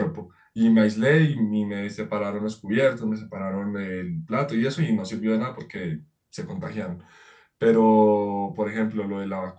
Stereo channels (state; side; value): identical; both; correlation 1.00